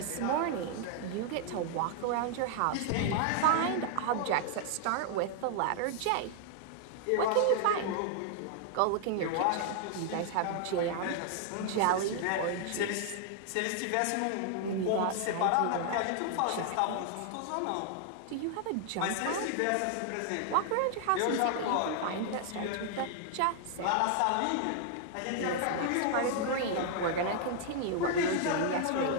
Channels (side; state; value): both; different; correlation 0.00